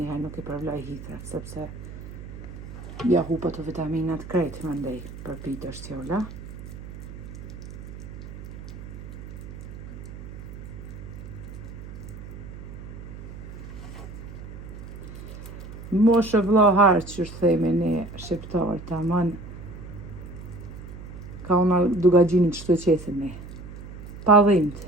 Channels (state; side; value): noise; right; hum, 12 dB below the sound